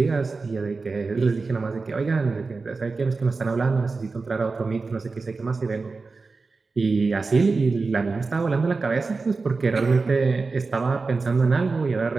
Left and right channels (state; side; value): quieter; left; 4.1 dB